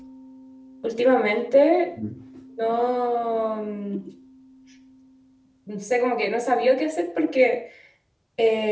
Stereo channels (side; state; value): both; identical; correlation 1.00